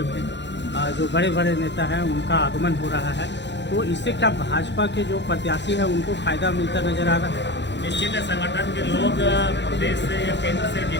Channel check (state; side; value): late; right; 0.52 ms